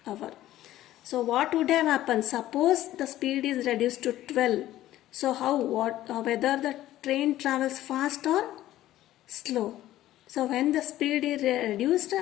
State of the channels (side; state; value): right; quieter; 14.2 dB